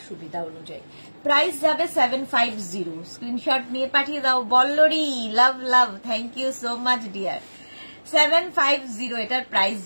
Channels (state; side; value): inverted; both; correlation -1.00